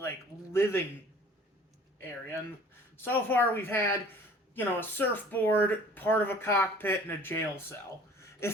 living area. And so far we've had, a surfboard, part of a cockpit, and a jail cell.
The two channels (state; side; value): normal; both; correlation 0.50